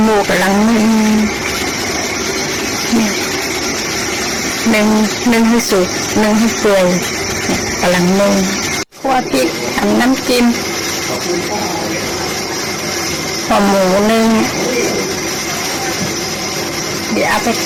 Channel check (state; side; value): identical; both; correlation 1.00